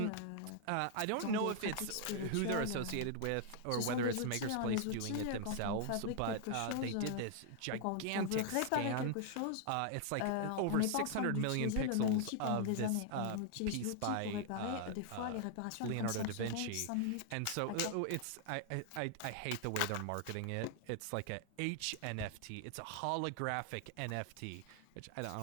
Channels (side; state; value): both; different; correlation 0.00